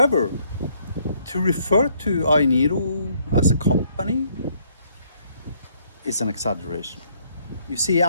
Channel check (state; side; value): inverted; both; correlation -0.67